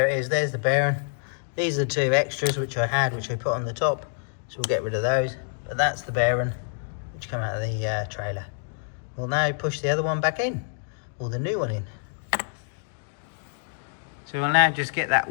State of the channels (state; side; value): silent; right; digital silence